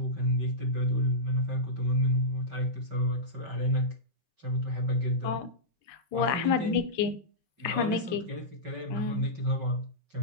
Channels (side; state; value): left; late; 5.2 ms